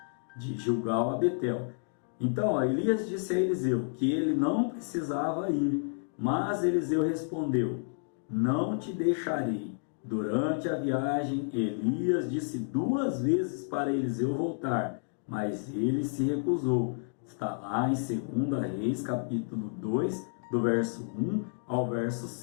de Gilgal a Betel. Então, Elias disse a Eliseu que ele não precisava ir, mas Eliseu respondeu: não te deixarei. Durante a viagem, Elias disse 2 vezes para Eliseu voltar, mas ele se recusou. Está lá em 2 Reis, capítulo 2, do verso 1 ao verso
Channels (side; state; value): right; silent; digital silence